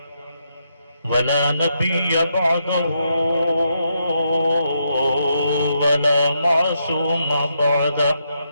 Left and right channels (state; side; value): inverted; both; correlation -0.80